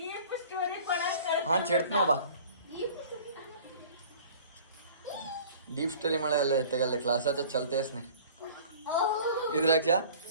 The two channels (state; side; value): inverted; both; correlation -0.46